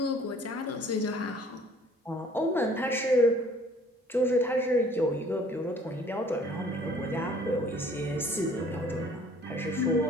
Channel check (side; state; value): both; normal; correlation 0.55